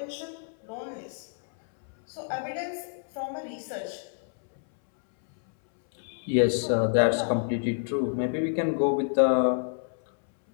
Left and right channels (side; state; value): right; silent; 59 dB below the other